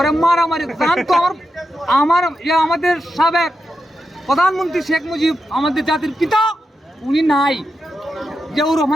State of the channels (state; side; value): normal; both; correlation 0.87